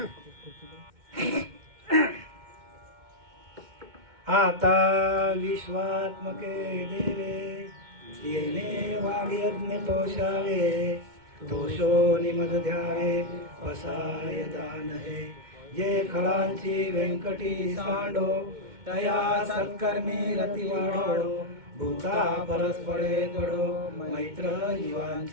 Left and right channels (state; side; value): late; left; 2.2 ms